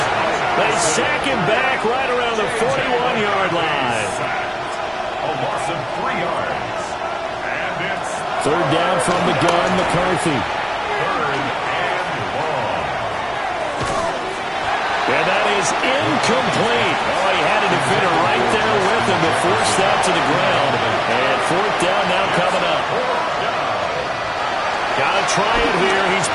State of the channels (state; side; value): identical; both; correlation 1.00